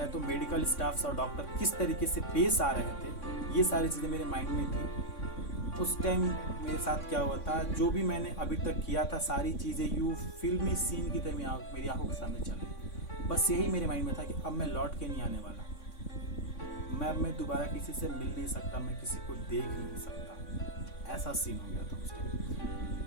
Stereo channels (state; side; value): late; right; 3.6 ms